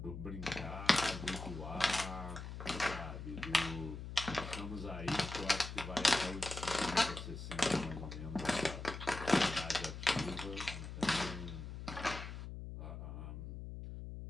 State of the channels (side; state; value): left; noise; hum, 8 dB below the sound